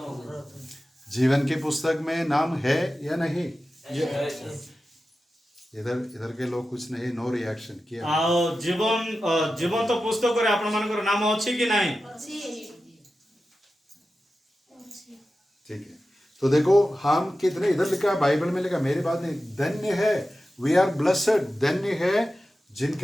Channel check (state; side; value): normal; both; correlation 0.93